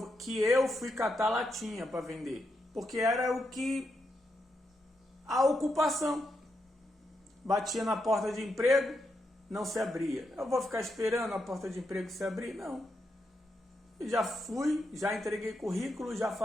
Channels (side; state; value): both; normal; correlation 0.83